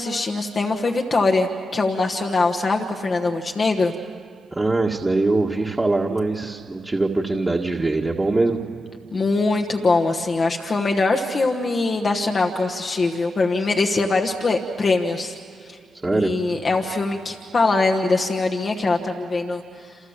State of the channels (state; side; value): normal; both; correlation 0.90